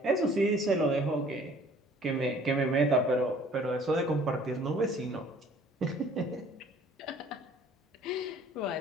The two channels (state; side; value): normal; both; correlation 0.54